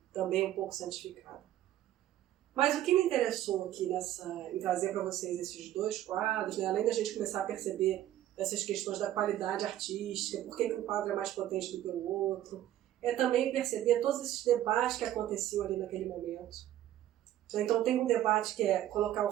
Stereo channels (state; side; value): quieter; left; 12.9 dB